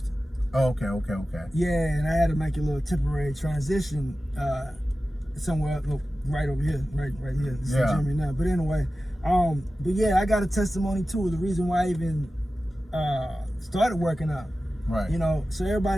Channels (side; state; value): both; normal; correlation 0.94